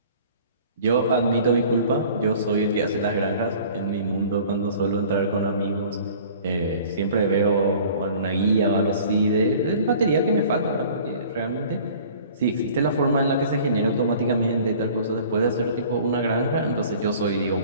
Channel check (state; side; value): inverted; both; correlation -0.48